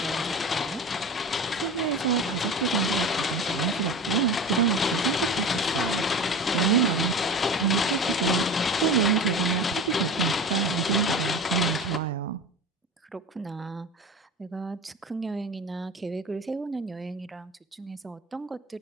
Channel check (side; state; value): both; normal; correlation 0.31